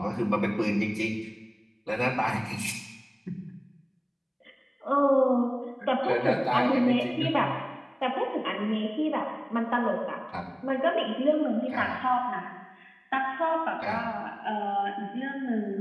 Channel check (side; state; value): both; identical; correlation 1.00